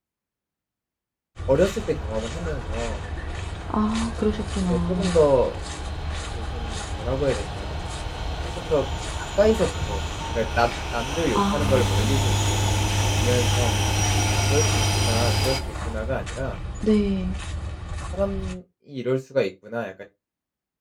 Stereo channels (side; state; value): both; identical; correlation 1.00